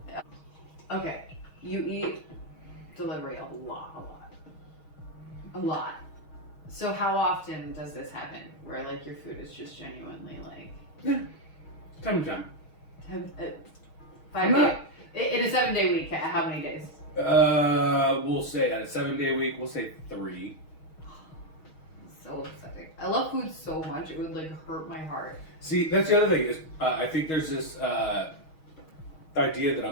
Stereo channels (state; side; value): late; right; 6.3 ms